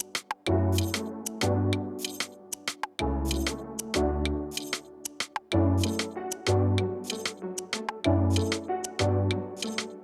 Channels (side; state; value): both; identical; correlation 1.00